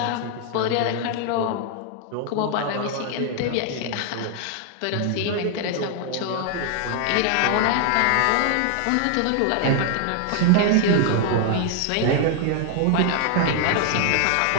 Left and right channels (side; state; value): both; different; correlation 0.00